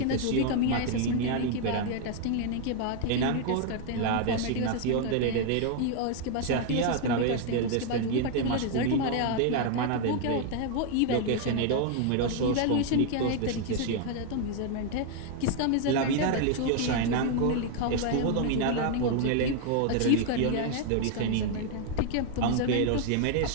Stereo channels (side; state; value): both; different; correlation 0.00